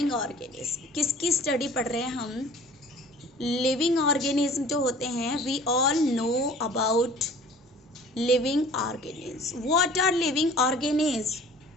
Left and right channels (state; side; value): normal; both; correlation 0.48